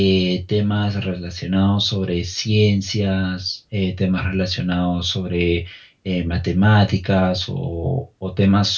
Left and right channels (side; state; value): both; identical; correlation 1.00